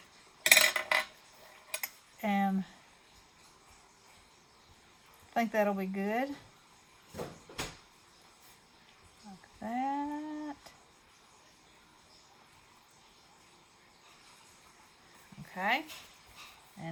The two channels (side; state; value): both; identical; correlation 1.00